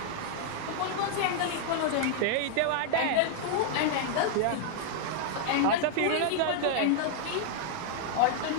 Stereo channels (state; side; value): different; both; correlation -0.01